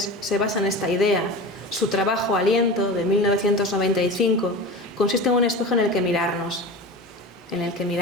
se basa en esta idea. Su trabajo Aliento, de 1995, consiste en un espejo en el que mirarnos.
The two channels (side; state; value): both; normal; correlation 0.30